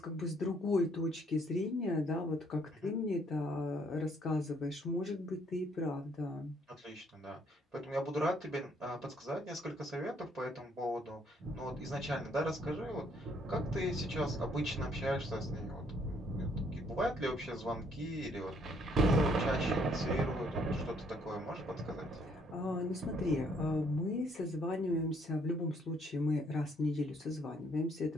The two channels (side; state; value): both; normal; correlation 0.67